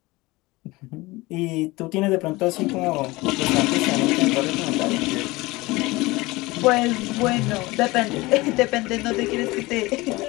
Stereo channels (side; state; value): right; quieter; 21.5 dB